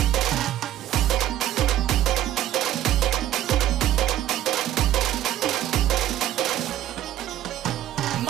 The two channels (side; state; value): left; quieter; 12.7 dB